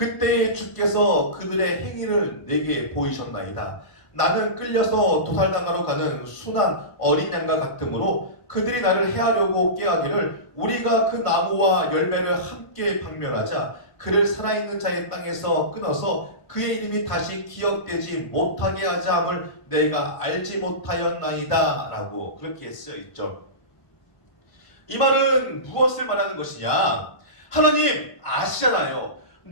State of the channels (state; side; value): late; right; 1.5 ms